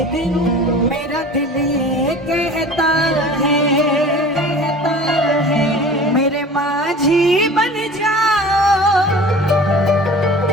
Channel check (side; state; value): both; normal; correlation 0.41